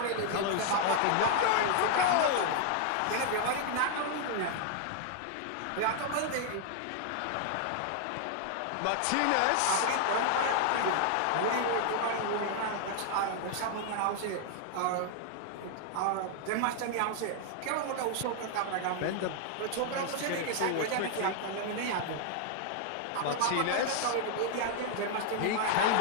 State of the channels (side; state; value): both; different; correlation 0.00